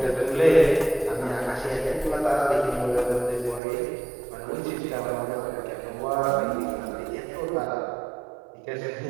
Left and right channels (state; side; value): drops out; left; at 3.6 s